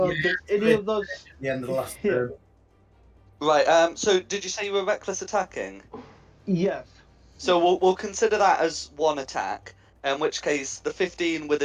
Does any of those At the end of the last hit? turn. Right. So did you say you were reckless attacking? Yes. So we'll consider that as one attack. In which case, the 15 with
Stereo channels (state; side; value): identical; both; correlation 1.00